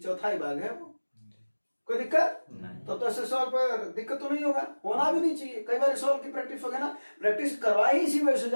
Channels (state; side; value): inverted; both; correlation -1.00